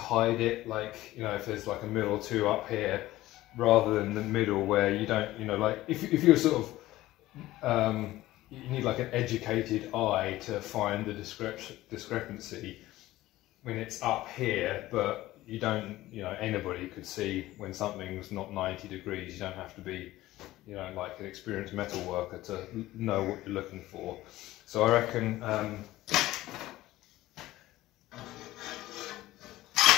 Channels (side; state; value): right; quieter; 16.5 dB